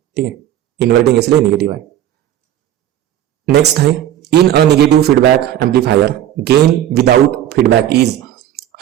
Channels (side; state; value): left; quieter; 11.7 dB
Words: ठीक है, इन्वर्टिंग इसलिए निगेटिव है। नेक्स्ट है in a negative feedback amplifier gain without feedback is